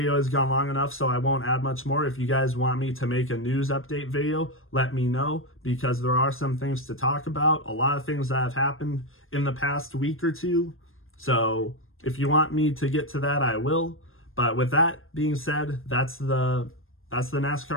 has gone long enough, so I won't add much more. If you guys want me to make a news update video, let me know, because there are some things to talk about. A lot of things that have happened in the past week or two. So if you want me to get to that, I will. But with that being said, that's the That's the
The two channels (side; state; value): right; late; 0.60 ms